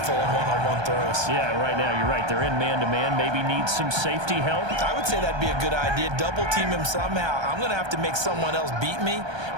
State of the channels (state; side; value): late; left; 1.3 ms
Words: on one-on-one throws. Yeah, right now, you're right. They're in man-to-man. Maybe needs some safety help. I would say that'd be a good idea. Double team him somehow. I'm going to have to make someone else beat me